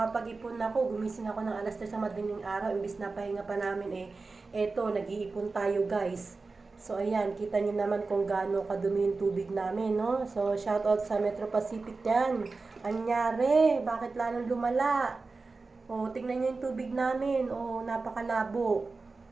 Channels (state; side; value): quieter; left; 3.9 dB